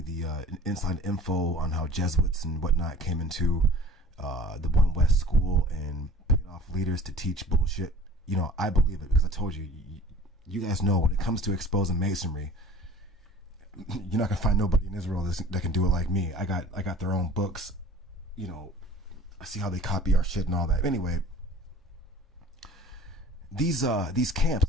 inside info on how Jesuits and whatnot came into the One West school and paid off leaders to teach bullshit. I believe it because I told you, you guys know when it comes to exposing Masonry, you're not gonna find nobody in Israel that can do it like me. I got their own books. I see how they copy our shit and all that. Anyway, these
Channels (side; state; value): both; normal; correlation 0.46